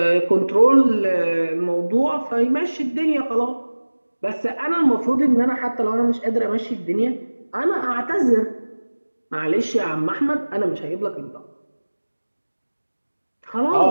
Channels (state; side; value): inverted; both; correlation -1.00